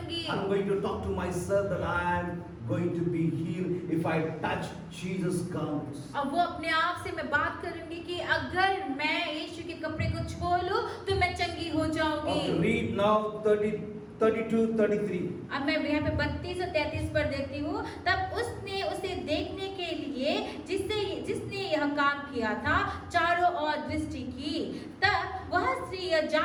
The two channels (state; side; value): identical; both; correlation 1.00